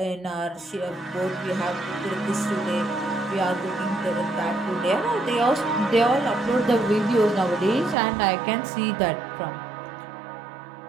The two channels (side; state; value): left; drops out; at 8.0 s